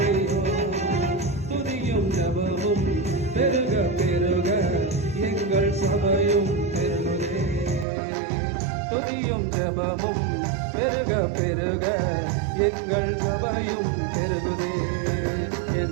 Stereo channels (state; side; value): drops out; left; at 7.9 s